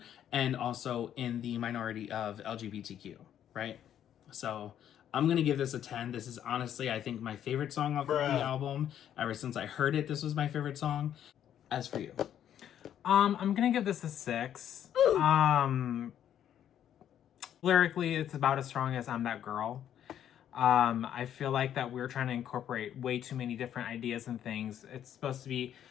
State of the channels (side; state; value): right; quieter; 10.2 dB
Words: and also in the minority of LGBTQ, right? So I'm gonna give this a 10. This is honestly, I think, my favorite song off of the album. Ever since I heard it, this was my favorite song. As for you? I'm gonna give this a 6. Lyrically, it's about as strong as I'm That Girl. I feel like that we're trying to incorporate way too many different ideas and things. It's supposed to be